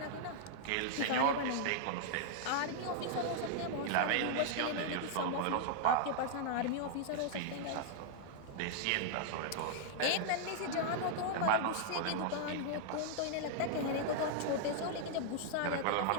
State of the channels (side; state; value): both; different; correlation -0.01